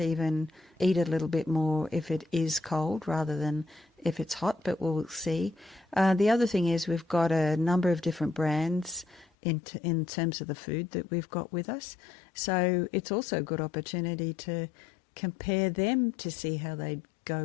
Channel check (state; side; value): drops out; right; at 9.2 s